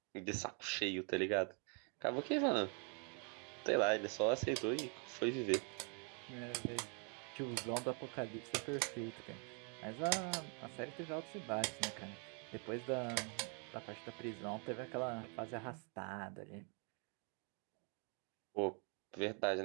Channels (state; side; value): quieter; left; 38.5 dB